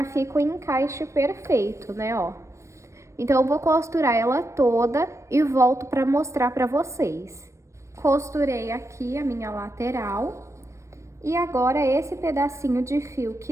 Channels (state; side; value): late; left; 0.14 ms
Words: fica o encaixe perfeito, né, ó. Então, eu vou costurar ela toda e volto pra mostrar pra vocês. Costurei aqui a minha lateral. E agora, esse pedacinho de fio